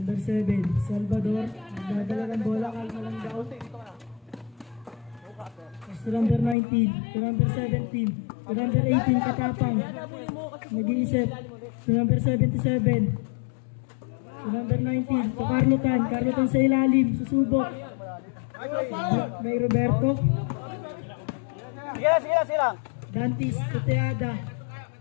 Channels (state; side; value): drops out; right; at 6.6 s